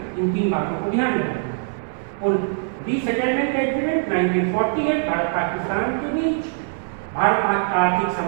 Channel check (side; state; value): left; silent; 60 dB below the other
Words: इन 3 बातों को ध्यान में रखना। और रीसेटलमेंट एग्रीमेंट 1948 भारत पाकिस्तान के बीच, भारत आर्थिक